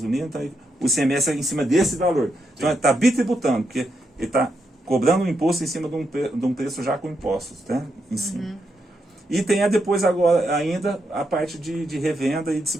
então o ICMS é em cima desse valor. Então ele está bitributando, porque ele está cobrando um imposto em cima de um preço já com impostos, né, em cima. E tem depois agora ainda a parte de revenda e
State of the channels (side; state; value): both; normal; correlation 0.82